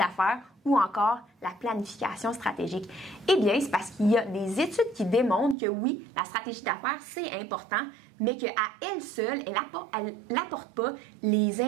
ou encore la planification stratégique. Eh bien, c'est parce qu'il y a des études qui démontrent que oui, la stratégie d'affaires, c'est important, mais qu'à elle seule, elle n'apporte pas les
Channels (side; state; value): left; drops out; at 5.6 s